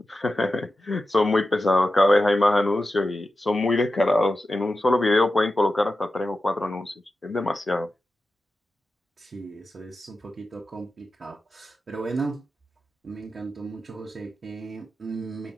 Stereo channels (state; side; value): normal; both; correlation 0.92